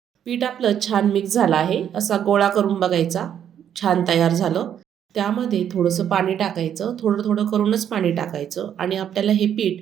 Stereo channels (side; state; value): left; quieter; 9.4 dB